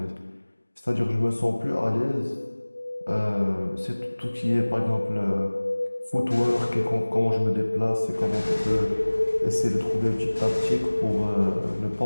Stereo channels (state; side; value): inverted; both; correlation -1.00